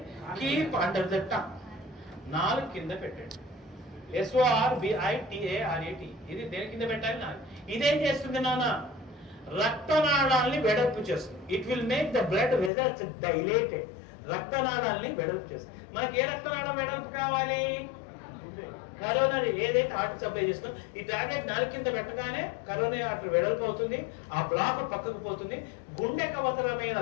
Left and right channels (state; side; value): drops out; right; at 12.7 s